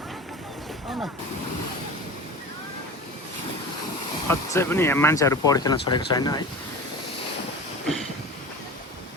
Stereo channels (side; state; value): both; normal; correlation 0.34